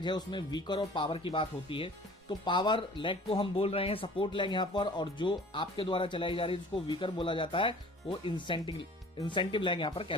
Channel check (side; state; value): both; normal; correlation 0.47